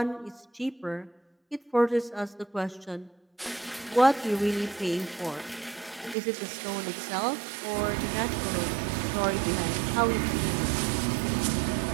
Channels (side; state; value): left; drops out; at 6.2 s